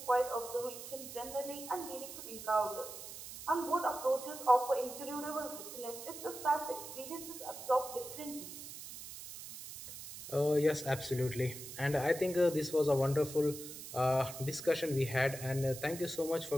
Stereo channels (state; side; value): noise; right; hiss, 11 dB below the sound